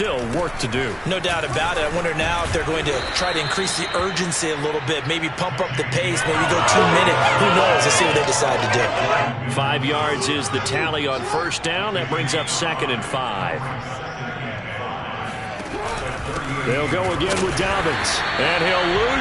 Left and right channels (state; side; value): identical; both; correlation 1.00